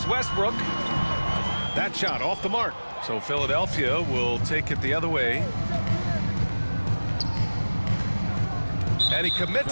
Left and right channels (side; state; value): both; inverted; correlation -1.00